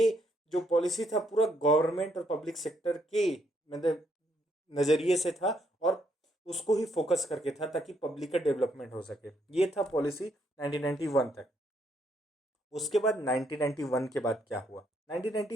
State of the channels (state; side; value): normal; both; correlation 0.73